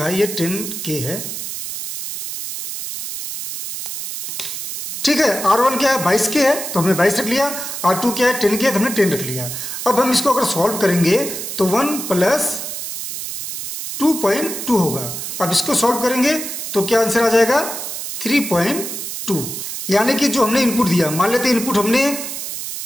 है, ये 10 के है, ठीक है। R1 क्या है, 22 के है, तो हमने 22 रख लिया। R2 क्या है, 10 के है, तो हमने 10 रख लिया। अब हम इसको अगर सॉल्व करेंगे तो 1 प्लस 2.2 होगा। अब इसको सॉल्व करेंगे तो क्या आंसर आ जाएगा, 3.2। यानी कि जो हमने इनपुट दिया, मान लेते हैं इनपुट हमने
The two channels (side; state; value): right; noise; hiss, 6 dB below the sound